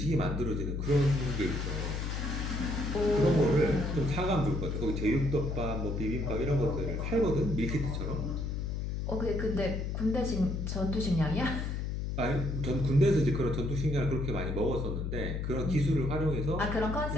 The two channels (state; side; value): noise; left; hum, 2 dB below the sound